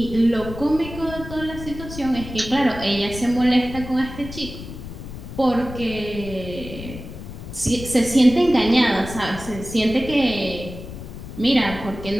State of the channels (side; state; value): left; noise; rumble, 11 dB below the sound